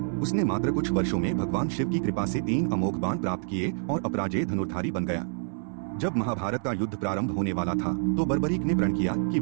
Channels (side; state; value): left; silent; digital silence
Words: उसने मात्र कुछ वर्षों में भगवान शिव की कृपा से 3 अमोघ बाण प्राप्त किए और अपराजेय धनुर्धारी बन गया। जब महाभारत का युद्ध प्रारंभ होने वाला था तो बर्बरीक ने प्रण किया कि